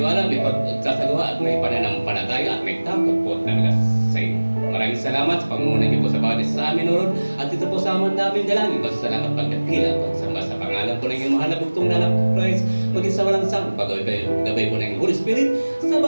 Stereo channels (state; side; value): inverted; both; correlation -1.00